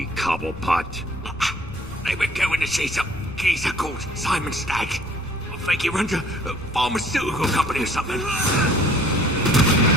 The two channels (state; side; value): noise; left; rumble, 15 dB below the sound